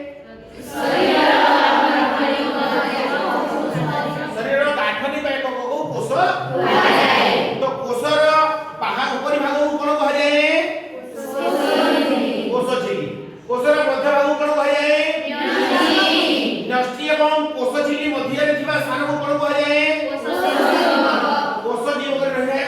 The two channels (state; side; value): identical; both; correlation 1.00